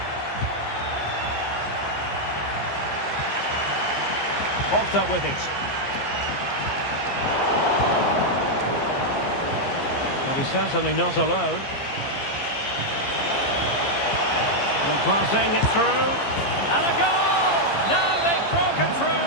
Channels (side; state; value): right; late; 15 ms